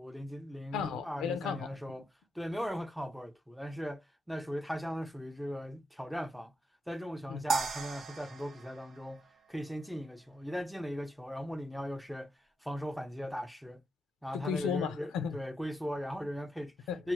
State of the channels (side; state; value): both; normal; correlation 0.82